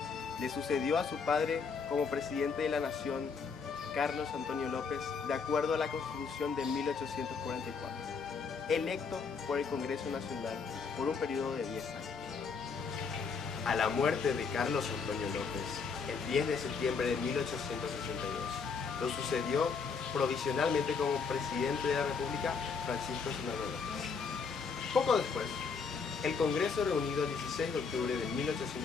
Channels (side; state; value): right; quieter; 5.4 dB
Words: Le sucedió a su padre como presidente de la nación Carlos Antonio López, de acuerdo a la Constitución de 1844, electo por el Congreso Nacional por un periodo de 10 años. A la muerte de Carlos Antonio López, el 10 de septiembre de 1862, lo sucedió provisionalmente como presidente de la República Francisco Solano López. Poco después, el Congreso reunido el 16 de octubre de